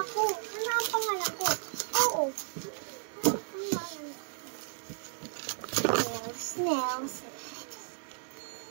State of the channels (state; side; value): silent; left; digital silence